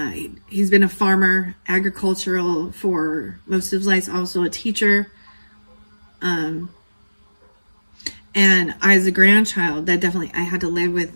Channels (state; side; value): inverted; both; correlation -1.00